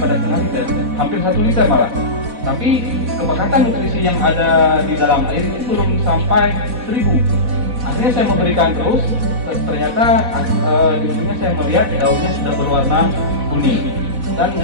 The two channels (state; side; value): late; left; 4.1 ms